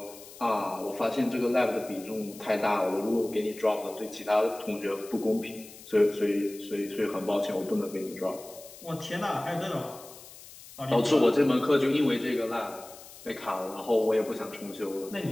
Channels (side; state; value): left; noise; hiss, 18 dB below the sound